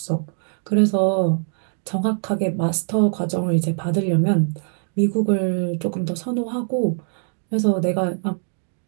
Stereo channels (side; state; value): left; silent; 62 dB below the other